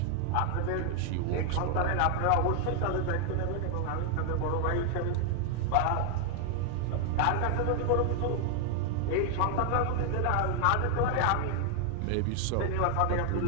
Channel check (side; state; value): both; different; correlation 0.00